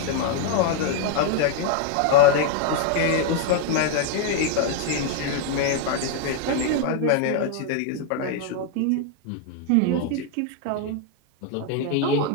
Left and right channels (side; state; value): both; different; correlation 0.00